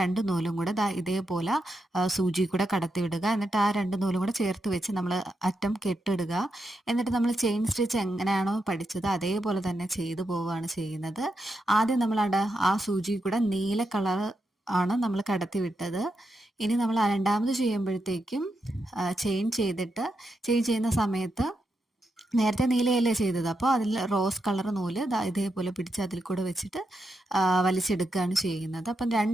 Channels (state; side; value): normal; both; correlation 0.85